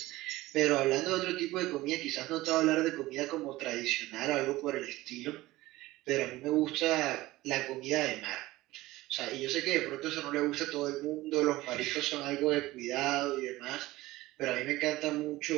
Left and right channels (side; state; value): left; quieter; 18.1 dB